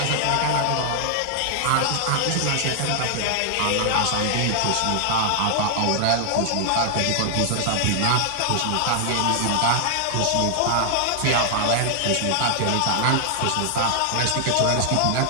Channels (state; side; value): different; both; correlation 0.00